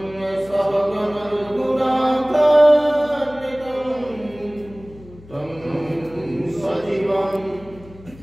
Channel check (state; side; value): noise; left; hum, 21 dB below the sound